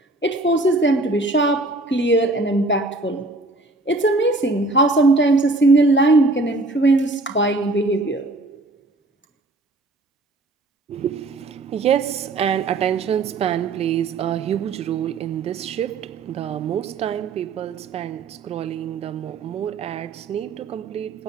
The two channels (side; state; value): left; quieter; 3.0 dB